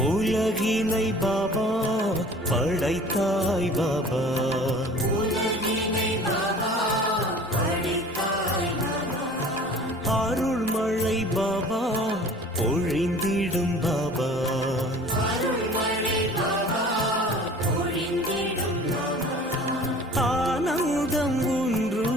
உலகினை பாபா படைத்தாய் பாபா அருள்மழை பாபா பொழிந்திடும் பாபா ஆனந்தம் உன்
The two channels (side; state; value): both; normal; correlation 0.46